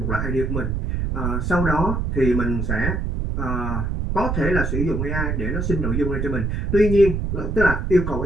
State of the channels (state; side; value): noise; right; rumble, 1 dB below the sound